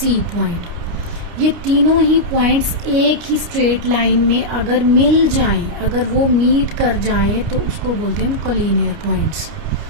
पॉइंट, ये तीनों ही पॉइंट्स एक ही स्ट्रेट लाइन में अगर मिल जाएं, अगर वो मीट कर जाएं, तो उसको बोलते हैं collinear points.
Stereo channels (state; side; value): late; left; 29 ms